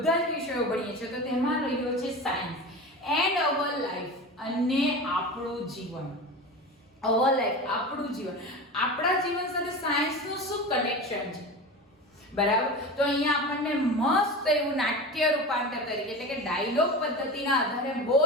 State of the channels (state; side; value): normal; both; correlation 0.29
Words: જ વિષયો ભણીએ છીએ. તો તેમાં રહ્યો છે સાયન્સ એન્ડ અવર લાઈફ અને આપણું જીવન. અવર લાઈફ આપણું જીવન. આપણા જીવન સાથે સાયન્સનું શું કનેક્શન છે? બરાબર? તો અહીંયા આપણને મસ્ત એવું નાટ્ય રૂપાંતર તરીકે એટલે કે ડાયલોગ પદ્ધતિના આધારે બહુ